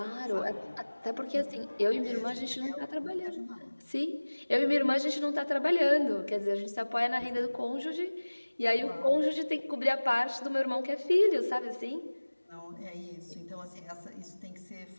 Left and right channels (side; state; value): both; inverted; correlation -1.00